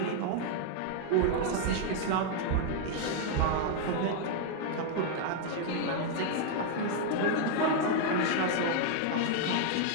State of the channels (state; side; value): different; both; correlation 0.00